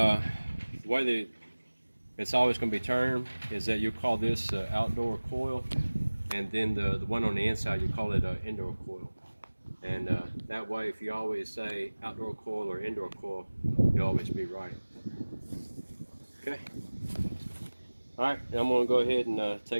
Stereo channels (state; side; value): inverted; both; correlation -1.00